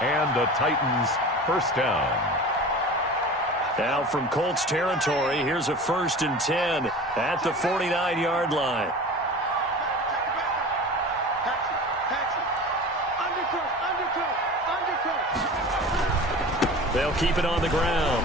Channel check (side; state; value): both; normal; correlation 0.36